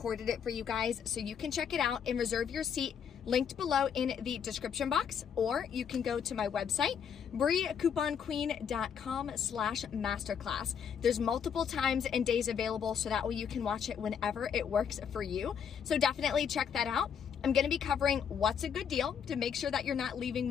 it for you guys so you can check it out and reserve your seat linked below in the description box, or you can go to my website, briecouponqueen.com/masterclass. There's multiple times and days available, so that way you can watch it whenever it works for you. So definitely check that out. I'm gonna be covering what's a good deal to make sure that you're not leaving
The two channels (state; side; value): quieter; right; 7.6 dB